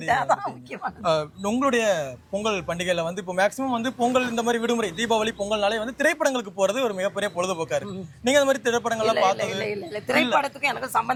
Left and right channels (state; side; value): identical; both; correlation 1.00